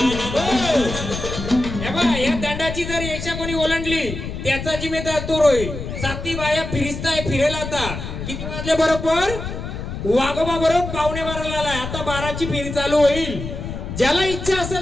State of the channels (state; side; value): noise; left; rumble, 7 dB below the sound